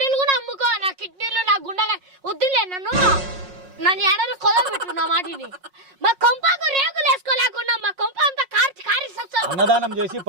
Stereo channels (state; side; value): late; left; 5.5 ms